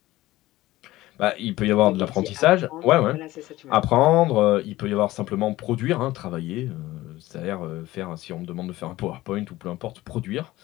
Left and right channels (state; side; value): quieter; right; 17.2 dB